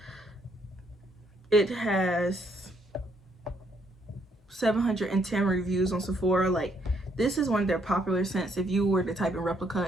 It has 710 reviews on Sephora. Like, this is one of their popular scents. If you were to type in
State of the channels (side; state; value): both; normal; correlation 0.71